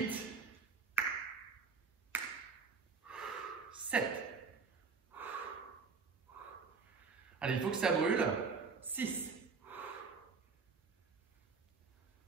7. Allez, il faut que ça brûle. 6.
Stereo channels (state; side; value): quieter; left; 5.0 dB